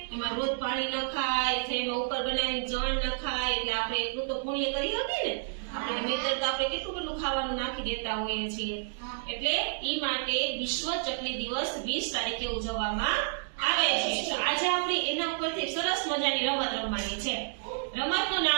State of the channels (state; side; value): silent; left; digital silence